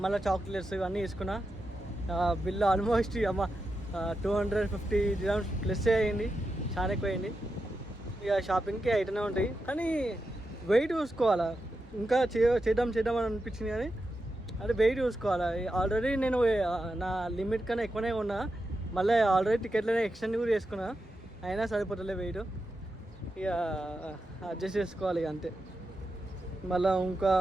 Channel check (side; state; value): both; normal; correlation 0.88